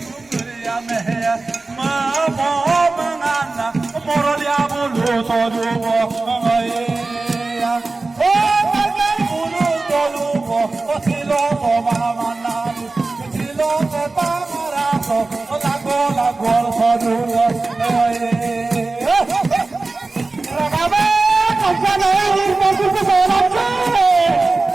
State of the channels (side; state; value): left; quieter; 3.5 dB